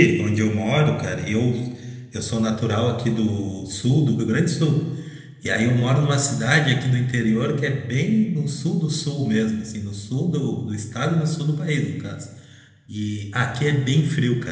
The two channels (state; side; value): identical; both; correlation 1.00